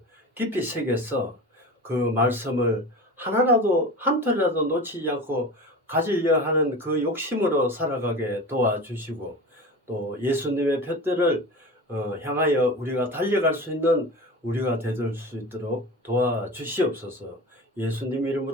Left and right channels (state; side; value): normal; both; correlation 0.32